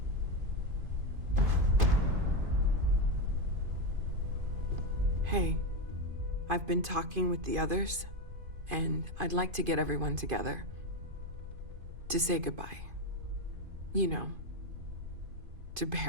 Hey, I've been talking with the others, and I'd like to get everyone together to say goodbye. You know, to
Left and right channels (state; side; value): late; left; 2.5 ms